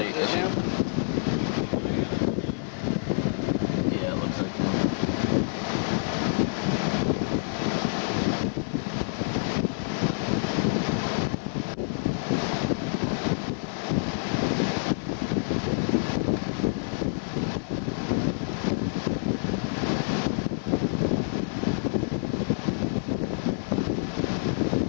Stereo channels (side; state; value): right; silent; 60 dB below the other